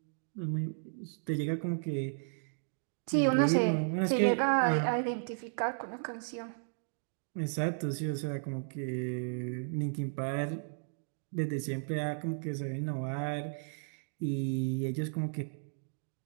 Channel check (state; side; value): silent; left; digital silence